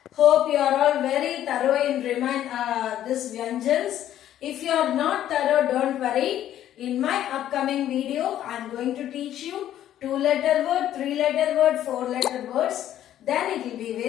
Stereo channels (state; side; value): quieter; right; 11.8 dB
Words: Hope you are all very thorough in this Vyanjans. If you are not thorough, don't worry. In my upcoming video, I am going to teach you 2-letter word, 3-letter word, 4-letter words. Then it will be